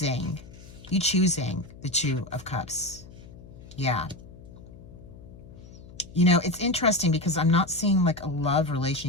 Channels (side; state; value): left; noise; hum, 18 dB below the sound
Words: the Two of Cups. Yeah. You know, it's interesting because I'm not seeing like a love